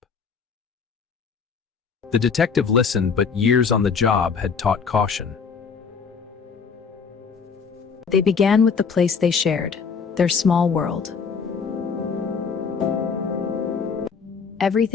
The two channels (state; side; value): quieter; right; 5.7 dB